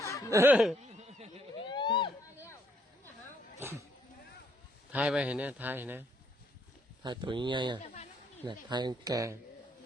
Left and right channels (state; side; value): normal; both; correlation 0.71